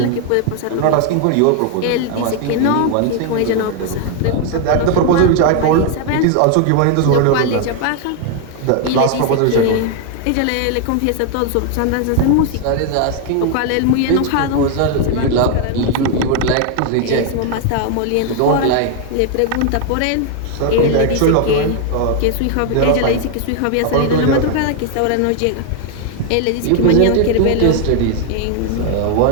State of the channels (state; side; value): different; both; correlation 0.00